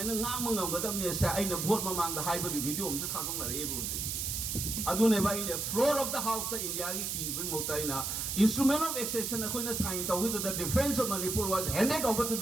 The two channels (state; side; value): noise; right; hiss, 2 dB below the sound